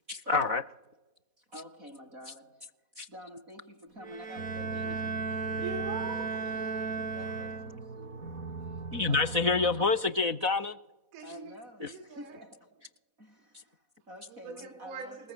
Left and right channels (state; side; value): late; left; 4.1 ms